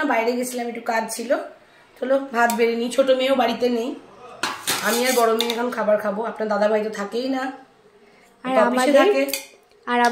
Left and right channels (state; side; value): identical; both; correlation 1.00